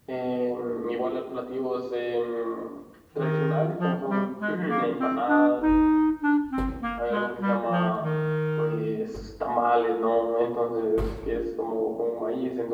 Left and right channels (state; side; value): identical; both; correlation 1.00